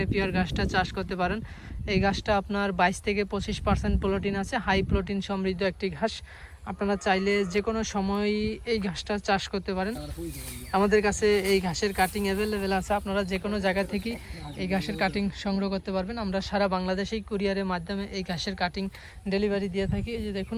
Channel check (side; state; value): both; identical; correlation 1.00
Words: ঘাসটা চাষ করতে পারেন। এই ঘাসটা আপনার 22 থেকে 25% প্রোটিন আছে, হাই প্রোটিন সমৃদ্ধ একটি ঘাস। আপনারা চাইলে যে কোনো সময় এই ঘাসটা চাষ করতে পারেন। আমাদের কাছে এই ঘাসের কাটিং অ্যাভেলেবেল আছে। আপনারা যে কোনো জায়গা থেকে এই ঘাসের কাটিং সংগ্রহ করতে পারবেন। আমরা সারা বাংলাদেশেই কুরিয়ারের মাধ্যমে এই ঘাসের কাটিং ডেলিভারি দিয়ে থাকি। এই যে দেখুন,